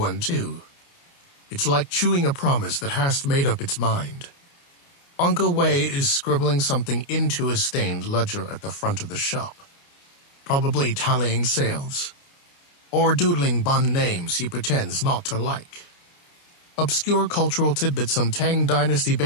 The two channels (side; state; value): right; late; 29 ms